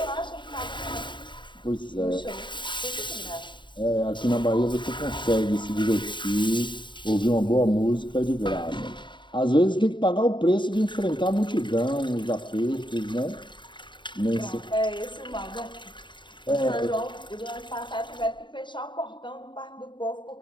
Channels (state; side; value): late; right; 0.23 ms